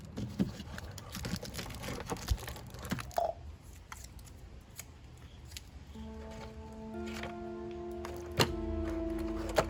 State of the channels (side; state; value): both; identical; correlation 1.00